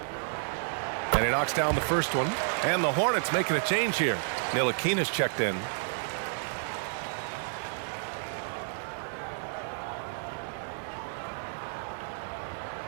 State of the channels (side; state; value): left; silent; digital silence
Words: And he knocks down the first one. And the Hornets making a change here. Ntilikina's checked in.